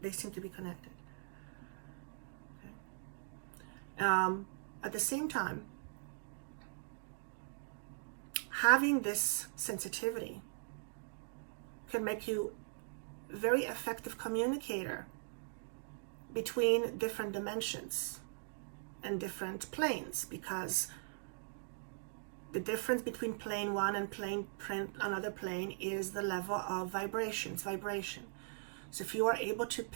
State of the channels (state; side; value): silent; left; digital silence